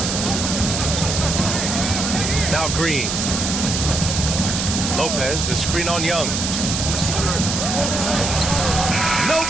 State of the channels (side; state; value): right; noise; hiss, 2 dB below the sound